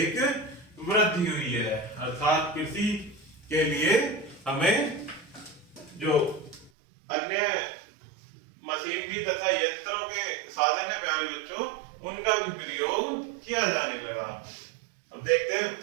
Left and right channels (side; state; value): left; drops out; at 6.7 s